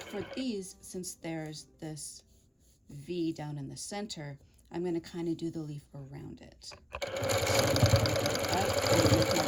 these, since there's this V down in the center, I'm going to kind of do the leaf around it. So up and make my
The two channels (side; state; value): both; identical; correlation 1.00